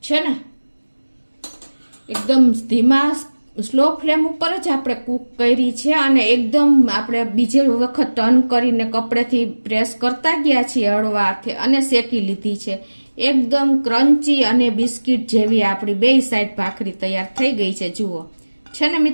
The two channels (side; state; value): both; inverted; correlation -1.00